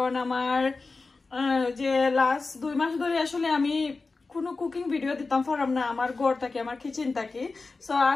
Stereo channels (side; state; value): right; quieter; 3.9 dB